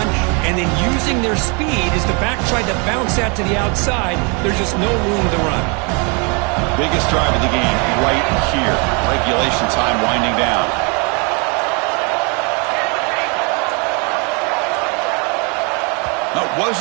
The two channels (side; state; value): left; quieter; 33.1 dB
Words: and then using their speed as the back tried to bounce that to the outside. There's just no room to run. Biggest drive of the game right here. Regulation time winding down. That